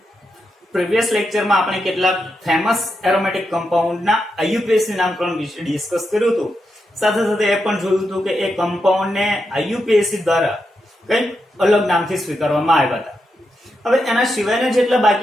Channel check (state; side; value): normal; both; correlation 0.85